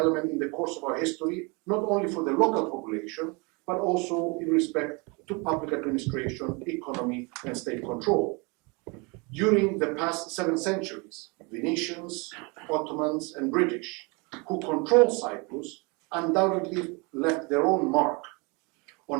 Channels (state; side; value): quieter; left; 29.7 dB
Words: in the course of our history, not only for the local population, but also in respect to public administration, economy, and state control. During the past 7 centuries, Venetians, Ottomans, and British, who controlled Cyprus, undoubtedly left their own mark